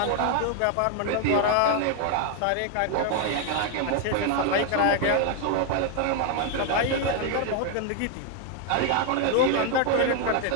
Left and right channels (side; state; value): both; different; correlation 0.00